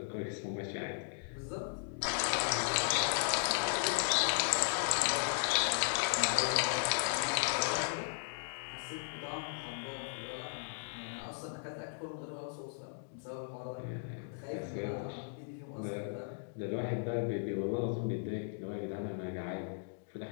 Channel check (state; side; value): silent; right; digital silence